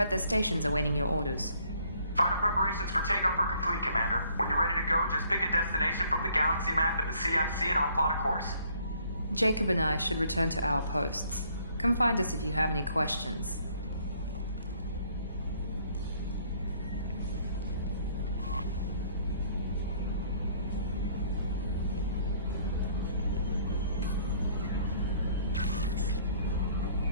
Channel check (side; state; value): both; inverted; correlation -0.62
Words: their stations awaiting your orders. Final preparations for takeoff are complete, Commander. When you're ready to go, just pick a destination from the galaxy map and the CIC and I'll plot a course. Jacob and I should return to our posts. Come find us if you have any questions.